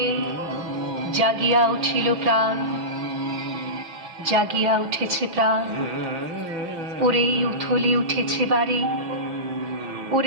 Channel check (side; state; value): left; late; 6.1 ms